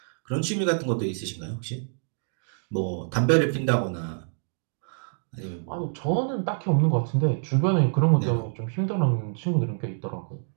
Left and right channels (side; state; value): left; silent; digital silence